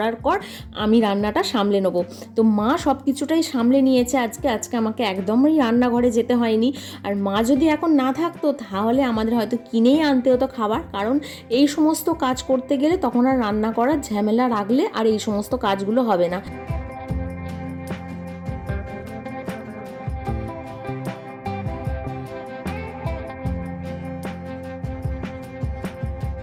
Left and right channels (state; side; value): identical; both; correlation 1.00